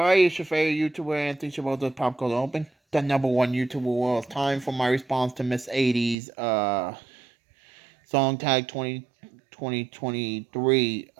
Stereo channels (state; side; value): drops out; left; at 6.2 s